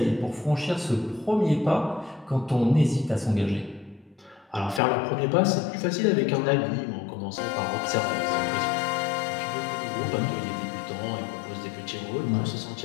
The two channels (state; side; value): drops out; right; at 4.8 s